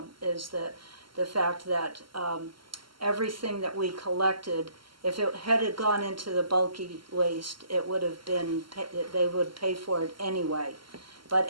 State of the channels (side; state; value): left; late; 0.73 ms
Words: is the fact that everything that we collected, if it had gone into the bulky waste, it would have been, they would pay for it anyway. But